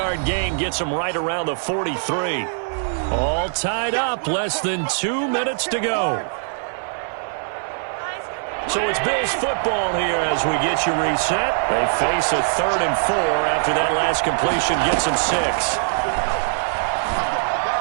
gain gets him right around the 43. All tied up, less than 2 minutes to go. So it's Bills football here as we get you reset. They face a 3rd and 4 after that last completion gets them 6.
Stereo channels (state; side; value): silent; left; 58 dB below the other